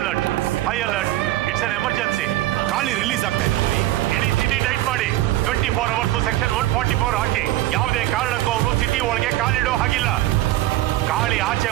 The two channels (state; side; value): quieter; left; 15.7 dB